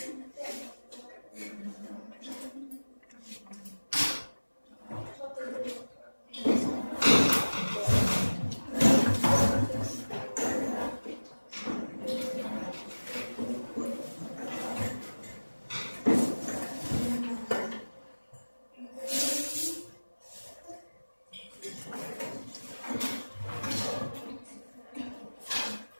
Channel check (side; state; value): both; inverted; correlation -1.00